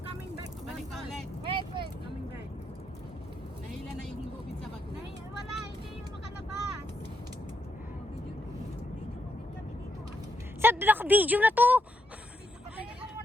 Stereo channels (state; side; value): normal; both; correlation 0.79